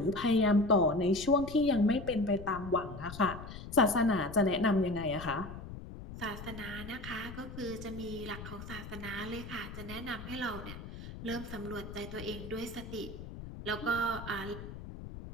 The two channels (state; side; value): noise; left; rumble, 11 dB below the sound